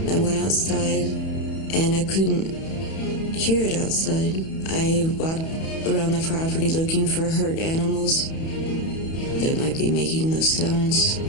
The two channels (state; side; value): late; right; 31 ms